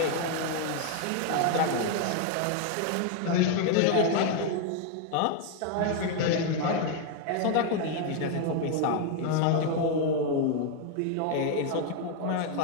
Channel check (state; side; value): different; both; correlation 0.00